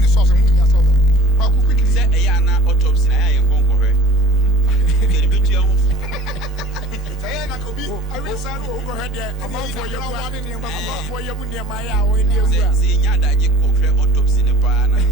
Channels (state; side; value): normal; both; correlation 0.44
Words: the sauce and moving yourself. How quickly Say a yana autopsy. I am going for her. Get a bit young. I will say, overhead there. I'm out for your one in your mouth for your money, my hour in the Say, Yada, you could have autopsy in the pan.